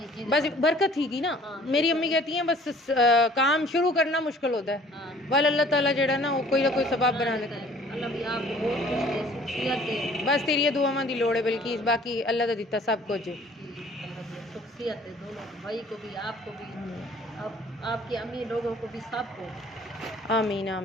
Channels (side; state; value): both; normal; correlation 0.53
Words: बस बरकत थी ना। हाँ, मेरी अम्मी कहती हैं बस काम शुरू करना मुश्किल होता है। हाँ। वाल अल्लाह ताला जेड़ा ना वो कोई ना कोई सबब बना लेता है। अल्लाह भी आपको बहुत कुछ दे, शख्सियत दे। बस तेरी दुआवां दी लोड़ है, बल्कि बाकी अल्लाह दा दिता सब कुछ है। शख्सियत है दोनों भाई को भी, आपको भी, आपकी अम्मी लोगों को भी, सबको। आमीन